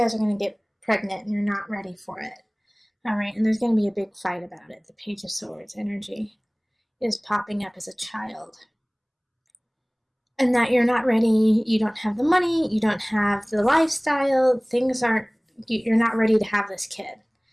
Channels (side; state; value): both; identical; correlation 1.00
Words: are going to get pregnant and you're not ready for it. All right, and there's going to be a big fight about it. The Page of Swords energy is popping up as a child. And that you're not ready, you don't have the money, you don't have the lifestyle, you're not ready to have this kid.